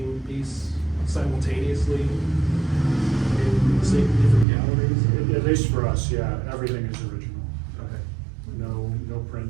piece simultaneously in the same different galleries? At least for us, yeah, everything is original. Okay. No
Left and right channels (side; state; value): left; drops out; at 4.5 s